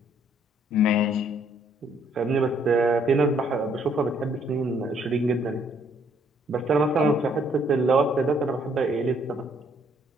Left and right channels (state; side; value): normal; both; correlation 0.66